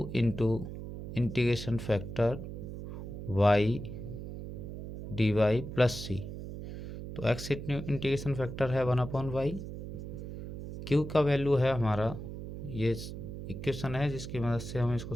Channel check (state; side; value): noise; right; hum, 9 dB below the sound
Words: into integration factor y dy plus c. तो x इंटीग्रेशन फैक्टर है 1/y, q का वैल्यू है हमारा, ये इक्वेशन है जिसकी मदद से हम इसको